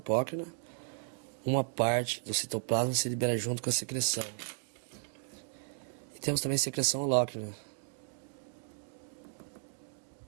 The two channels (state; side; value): silent; left; digital silence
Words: uma parte do citoplasma se libera junto com a secreção. E temos também secreção holócrina.